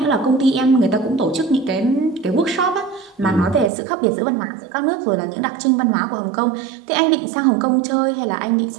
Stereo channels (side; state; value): left; drops out; at 3.7 s